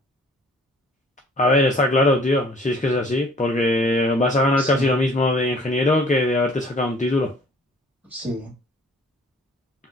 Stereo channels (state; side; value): normal; both; correlation 0.54